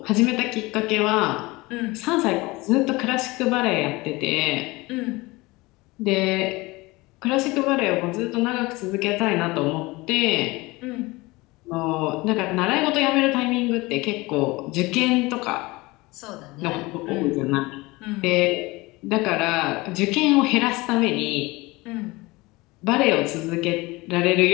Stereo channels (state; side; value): quieter; right; 22.4 dB